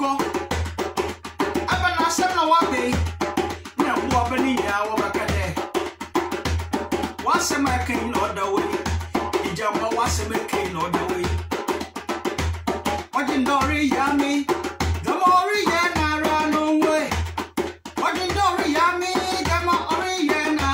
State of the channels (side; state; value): both; identical; correlation 1.00